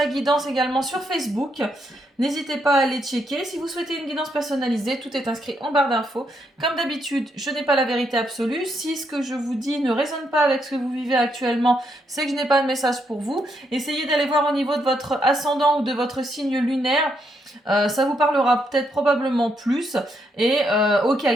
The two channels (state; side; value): normal; both; correlation 0.77